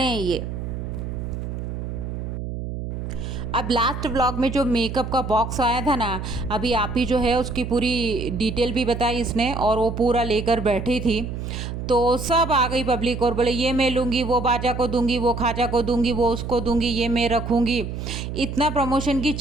हैं ये। अब लास्ट व्लॉग में जो मेकअप का बॉक्स आया था ना, अभी आप ही जो है उसकी पूरी डिटेल भी बताई इसने और वो पूरा लेकर बैठी थी। तो सब आ गई पब्लिक और बोले ये मैं लूँगी, वो बाजा को दूंगी, वो खाजा को दूंगी, वो उसको दूंगी, ये मैं रखूँगी। इतना प्रमोशन की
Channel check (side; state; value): right; noise; hum, 6 dB below the sound